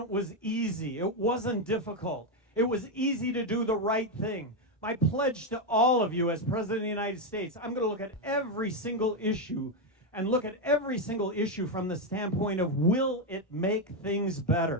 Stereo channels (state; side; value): normal; both; correlation 0.05